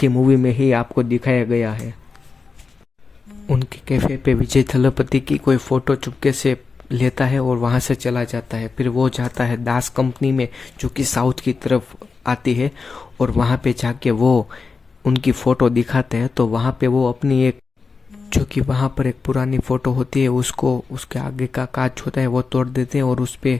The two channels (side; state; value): right; quieter; 4.7 dB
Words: मूवी में ही आपको दिखाया गया है। उनके कैफे पे विजय थलपति की कोई फोटो चुपके से लेता है और वहाँ से चला जाता है। फिर वो जाता है दास कंपनी में जो कि साउथ की तरफ आती है और वहाँ पे जाके वो उनकी फ़ोटो दिखाते हैं। तो वहाँ पे वो अपनी एक जो कि वहाँ पर एक पुरानी फ़ोटो होती है उसको उसके आगे का कांच होता है वो तोड़ देते हैं और उस